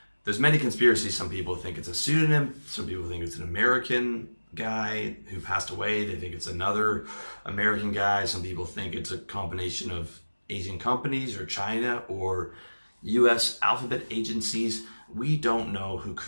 there's many conspiracies. Some people think it's a pseudonym. Some people think it's an American guy who passed away. They think it's another American guy. Some people think it's a combination of Asian companies or China or US alphabet agencies. We don't know who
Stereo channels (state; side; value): inverted; both; correlation -1.00